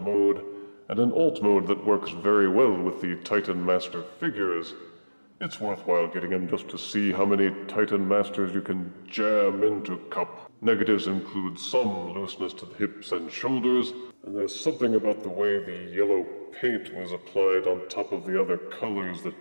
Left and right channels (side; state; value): both; inverted; correlation -1.00